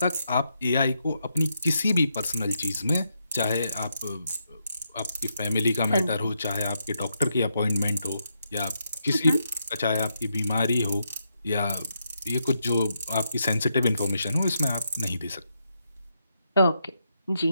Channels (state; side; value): inverted; both; correlation -0.81